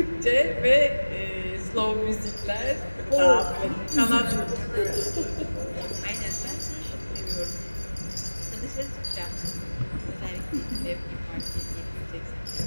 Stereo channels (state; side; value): inverted; both; correlation -1.00